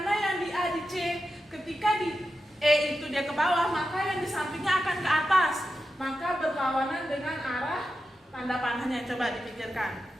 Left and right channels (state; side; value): normal; both; correlation 0.90